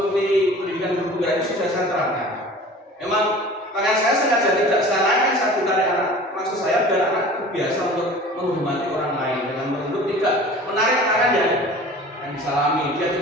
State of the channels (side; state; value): both; normal; correlation 0.42